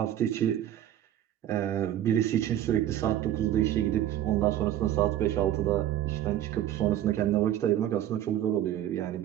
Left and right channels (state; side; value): quieter; left; 12.0 dB